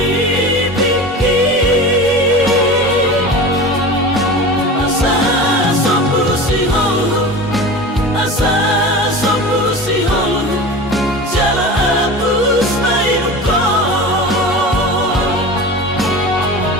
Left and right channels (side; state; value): both; normal; correlation 0.32